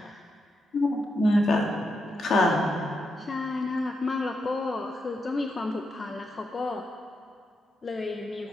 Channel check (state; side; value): normal; both; correlation 0.84